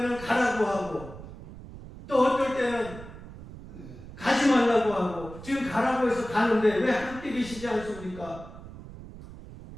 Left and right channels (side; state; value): right; noise; rumble, 15 dB below the sound